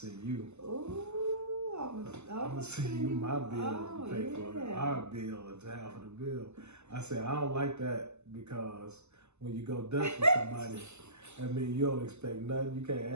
you. Ooh, I'm going to send you my bill to pay for our bill. It's half of the bill. I said, I don't like that because when you go Dutch with somebody, I mean, you don't expect nothing. You can't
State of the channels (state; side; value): late; left; 0.82 ms